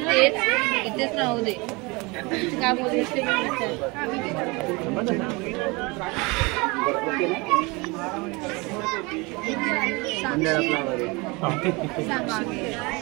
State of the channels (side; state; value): left; quieter; 26.4 dB